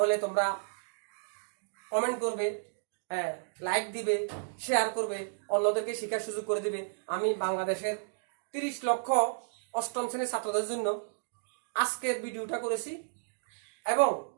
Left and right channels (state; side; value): silent; left; digital silence